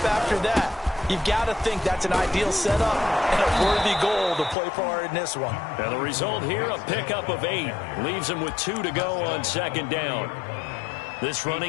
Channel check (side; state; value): right; drops out; at 4.5 s